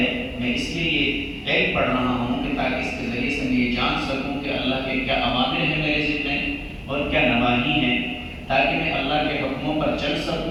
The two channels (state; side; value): identical; both; correlation 1.00